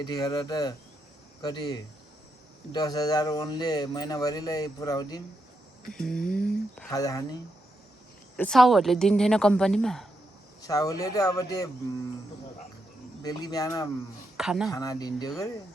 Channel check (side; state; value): both; normal; correlation 0.83